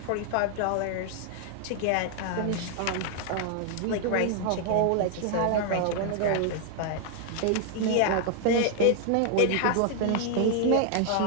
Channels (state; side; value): different; both; correlation 0.00